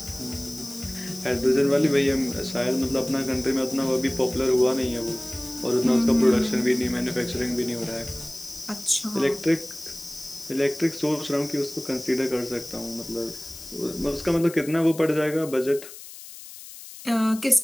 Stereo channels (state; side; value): noise; left; hiss, 15 dB below the sound